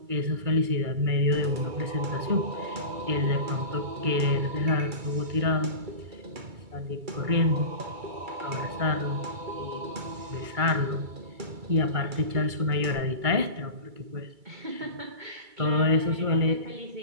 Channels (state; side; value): late; left; 2.3 ms